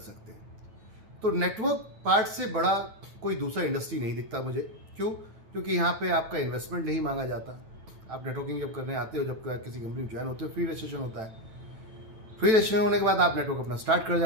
हैं। तो नेटवर्क पार्ट से बड़ा कोई दूसरा इंडस्ट्री नहीं दिखता मुझे। क्यों? क्योंकि यहाँ पे आपका इन्वेस्टमेंट नहीं मांगा जाता। आप नेटवर्किंग जब करने आते हो, जब किसी कंपनी में ज्वाइन होते हो, फ्री रजिस्ट्रेशन होता है। फ्री रजिस्ट्रेशन होने के बाद आप नेटवर्क अपना स्टार्ट कर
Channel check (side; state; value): left; late; 9.1 ms